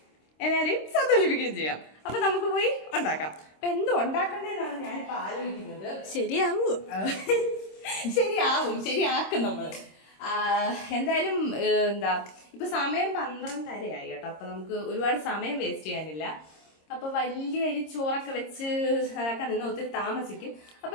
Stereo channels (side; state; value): right; late; 26 ms